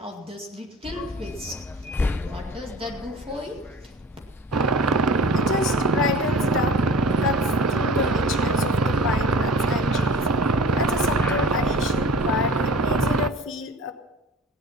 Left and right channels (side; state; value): both; normal; correlation 0.41